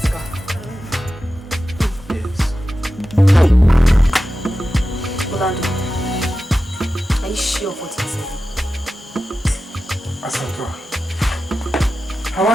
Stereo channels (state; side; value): normal; both; correlation 0.93